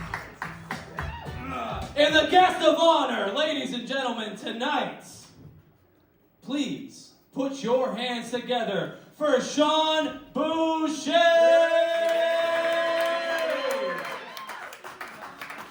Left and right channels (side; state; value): both; identical; correlation 1.00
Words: And the guest of honor, ladies and gentlemen, tonight, please put your hands together for Sean Boucher.